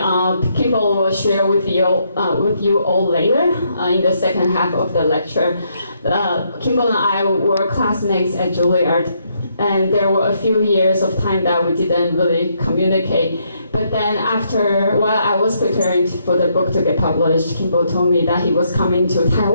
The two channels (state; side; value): inverted; both; correlation -0.75